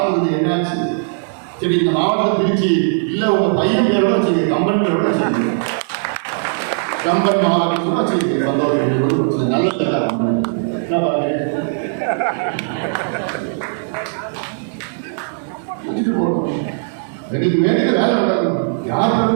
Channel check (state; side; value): silent; left; digital silence